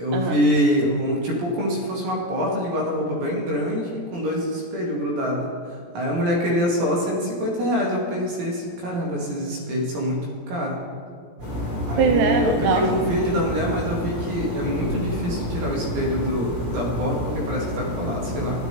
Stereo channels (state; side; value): late; left; 17 ms